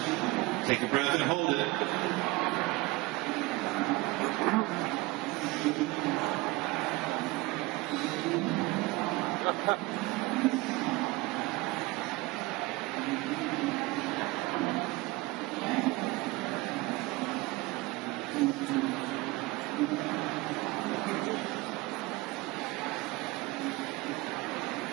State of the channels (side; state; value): left; quieter; 21.9 dB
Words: take a breath and hold it.